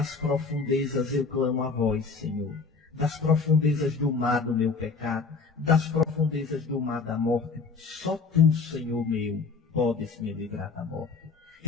profundezas eu clamo a vós, Senhor. Das profundezas do mar do meu pecado. Das profundezas do mar da morte. Só tu, Senhor meu, podes me livrar da morte.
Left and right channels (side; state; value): right; quieter; 4.6 dB